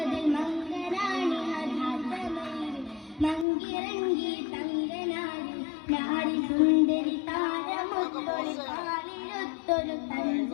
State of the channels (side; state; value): right; drops out; at 3.5 s